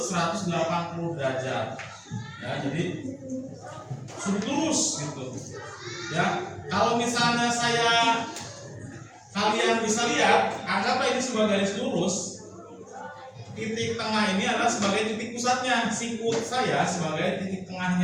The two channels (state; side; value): identical; both; correlation 1.00